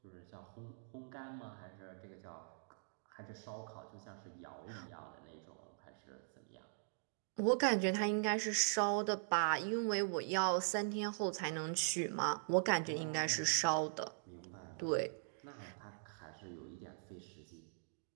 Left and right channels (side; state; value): left; silent; digital silence